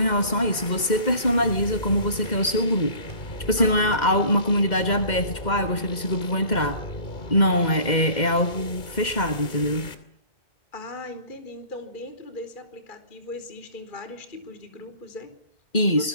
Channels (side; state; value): right; late; 2.1 ms